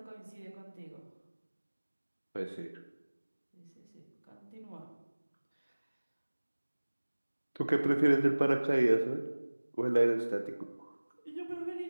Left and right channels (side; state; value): both; inverted; correlation -1.00